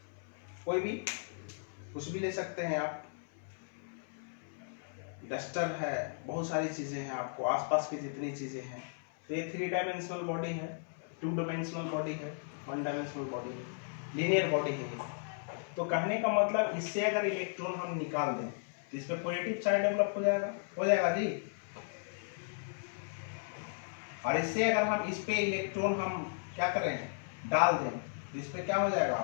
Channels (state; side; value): silent; right; 54 dB below the other